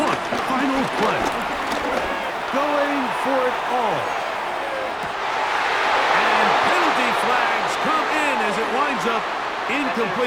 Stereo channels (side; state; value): both; identical; correlation 1.00